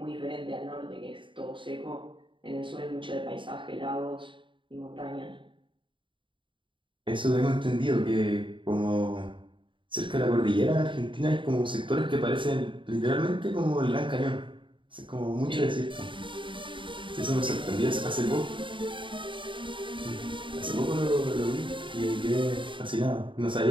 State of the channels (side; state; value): left; late; 0.24 ms